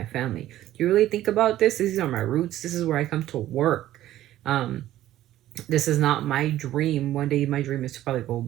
family. Do you really think about this? These are my roots. This is where I come to work. This is not my dream. One day my dream is to probably go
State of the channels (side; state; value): left; quieter; 13.8 dB